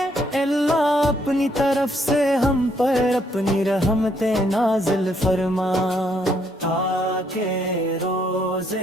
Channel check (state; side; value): normal; both; correlation 0.71